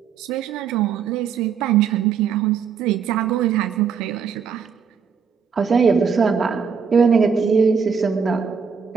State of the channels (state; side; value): quieter; left; 6.4 dB